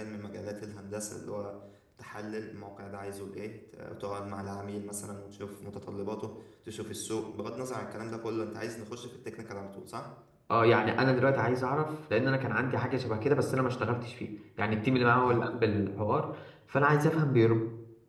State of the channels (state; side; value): identical; both; correlation 1.00